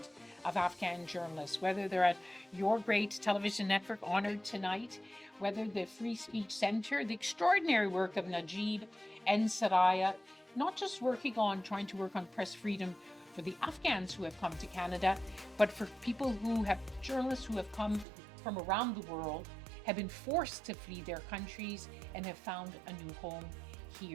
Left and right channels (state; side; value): drops out; left; at 18.1 s